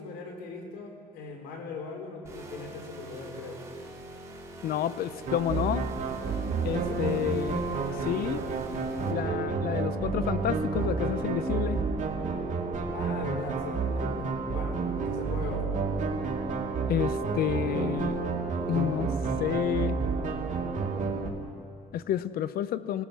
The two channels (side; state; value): both; normal; correlation 0.44